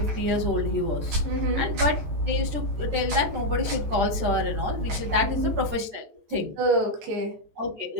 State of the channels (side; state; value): left; late; 13 ms